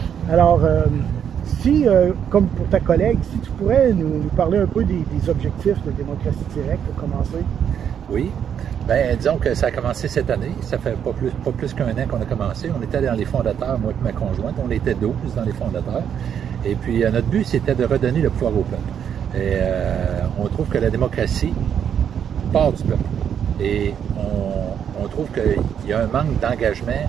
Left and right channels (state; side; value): quieter; left; 8.5 dB